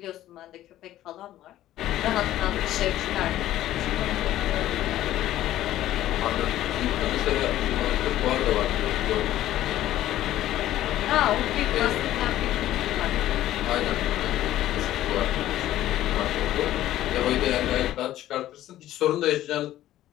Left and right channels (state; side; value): quieter; right; 13.7 dB